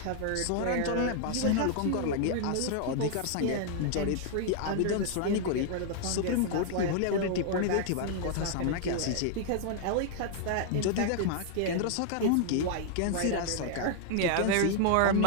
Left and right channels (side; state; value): both; different; correlation -0.01